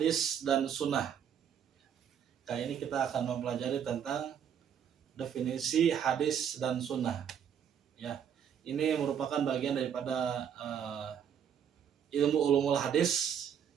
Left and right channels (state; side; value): quieter; left; 8.5 dB